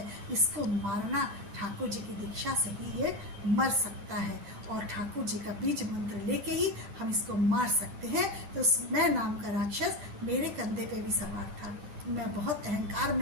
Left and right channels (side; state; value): left; late; 9.1 ms